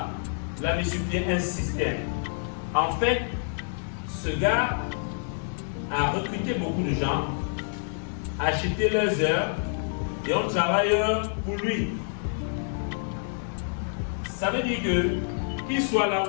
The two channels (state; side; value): silent; right; digital silence